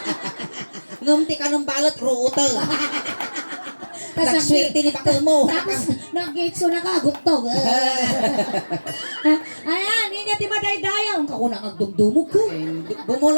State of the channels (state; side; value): inverted; both; correlation -1.00